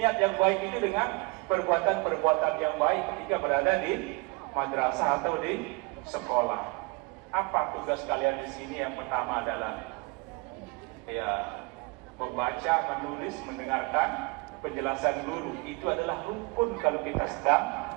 yang baik itu dengan perbuatan-perbuatan yang baik ketika berada di madrasah atau di sekolah. Apa tugas kalian di sini? Yang pertama adalah ya membaca, menulis, mendengarkan penjelasan guru. Itu adalah rukun kalau kita sedang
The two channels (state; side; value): quieter; left; 27.6 dB